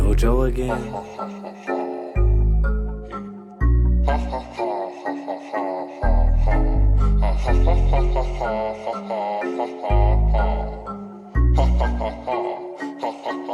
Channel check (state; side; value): identical; both; correlation 1.00